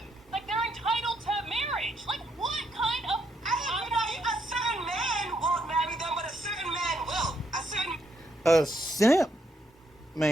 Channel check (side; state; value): both; normal; correlation 0.75